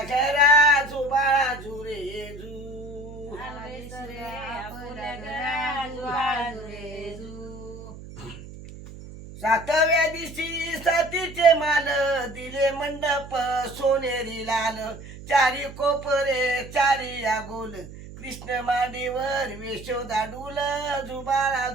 घरा जुबाळा जुरे जू. सरे आपल्या घरा जुबाळा जुरे जू. सातव्या दिवशी सतीचे माल दिले मंडप सोनेरी लाल चारी कोपरे चारी या गोल कृष्ण मांडीवर यशोदा डुल जुबाळा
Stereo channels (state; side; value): noise; right; hum, 14 dB below the sound